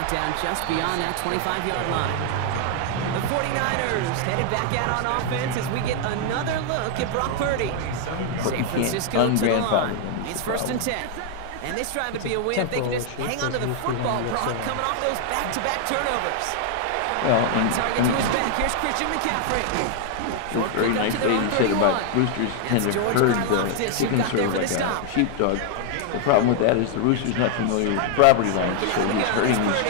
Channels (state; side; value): different; both; correlation 0.00